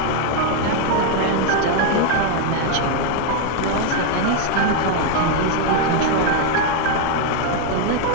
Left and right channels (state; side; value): different; both; correlation 0.01